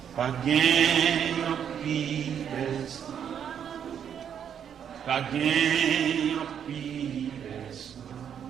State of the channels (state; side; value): quieter; left; 8.5 dB